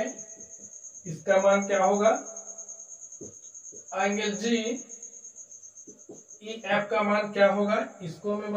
इसका मान क्या होगा, एंगल GEF का मान क्या होगा, इसको हमें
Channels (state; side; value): identical; both; correlation 1.00